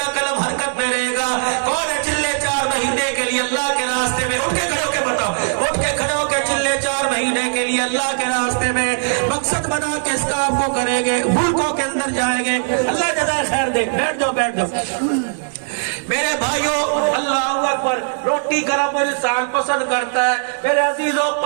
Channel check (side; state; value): left; silent; 61 dB below the other